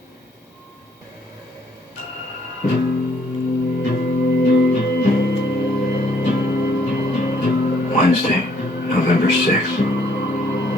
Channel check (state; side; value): normal; both; correlation 0.66